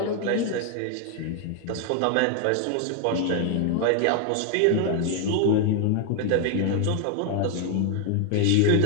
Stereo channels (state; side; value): different; both; correlation 0.00